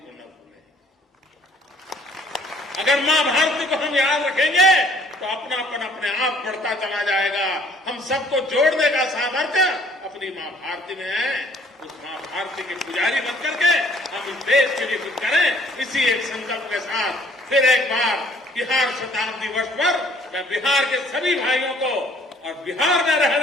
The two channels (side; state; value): both; normal; correlation 0.59